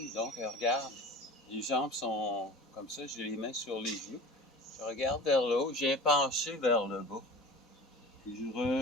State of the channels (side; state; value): both; normal; correlation 0.38